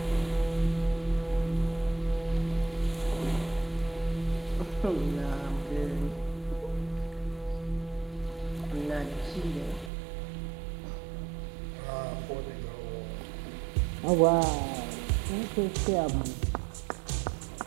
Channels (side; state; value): left; drops out; at 9.9 s